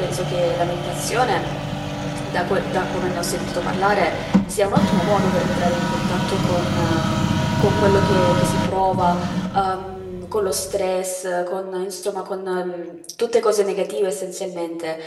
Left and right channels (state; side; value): identical; both; correlation 1.00